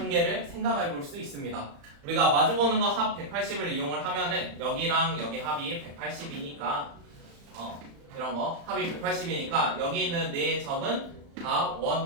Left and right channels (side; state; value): left; late; 35 ms